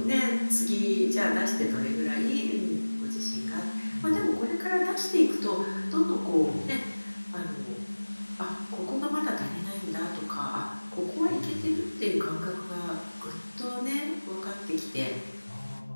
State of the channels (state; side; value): inverted; both; correlation -1.00